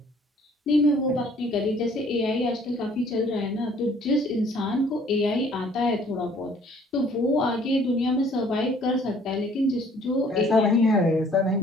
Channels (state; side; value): normal; both; correlation 0.58